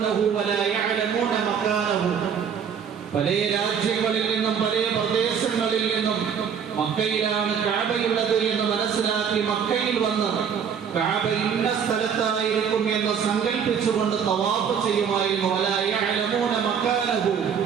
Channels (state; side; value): quieter; left; 7.4 dB